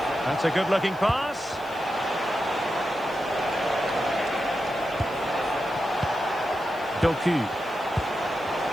That's a good-looking pass. Doku.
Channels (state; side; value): noise; right; hiss, 24 dB below the sound